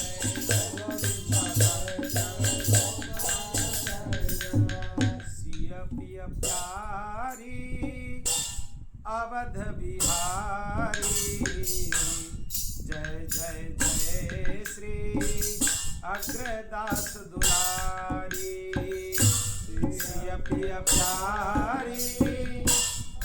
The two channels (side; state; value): both; identical; correlation 1.00